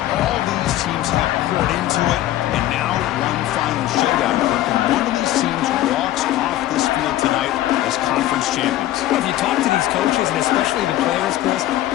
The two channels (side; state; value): right; quieter; 14.3 dB